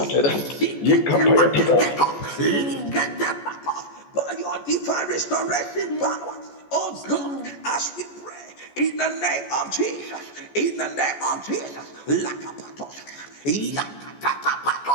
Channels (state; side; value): late; right; 14 ms